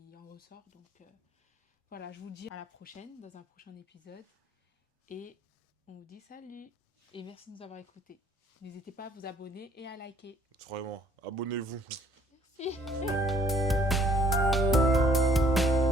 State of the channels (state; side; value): normal; both; correlation 0.62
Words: en ressort. Donc voilà, je vous dis à la prochaine, dans un prochain épisode. Et on vous dit salut. Et merci de nous avoir écoutés. N'hésitez pas à vous abonner et à liker. Vraiment, abonnez-vous. Merci.